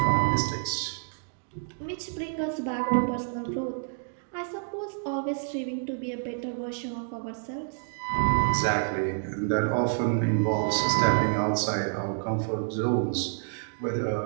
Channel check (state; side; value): silent; left; digital silence